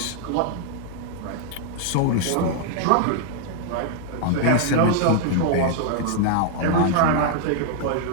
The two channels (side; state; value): both; different; correlation 0.00